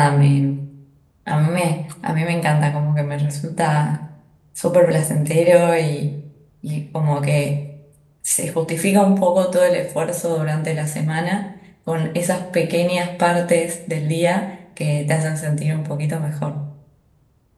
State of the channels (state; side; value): identical; both; correlation 1.00